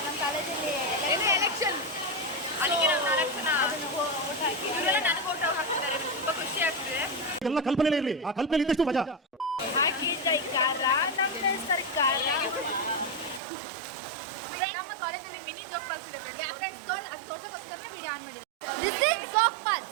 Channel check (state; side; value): drops out; left; at 13.4 s